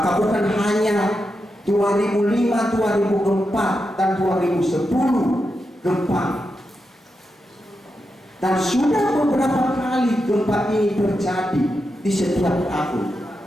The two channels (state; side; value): normal; both; correlation 0.87